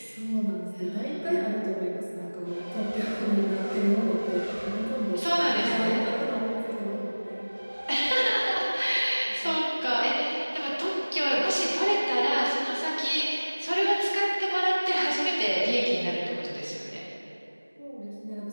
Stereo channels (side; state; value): both; inverted; correlation -1.00